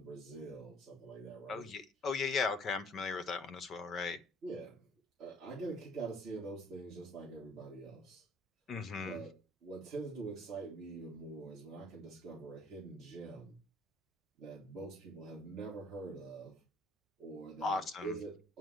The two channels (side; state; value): both; normal; correlation 0.58